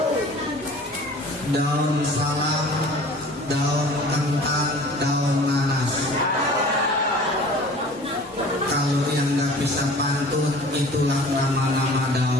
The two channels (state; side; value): normal; both; correlation 0.45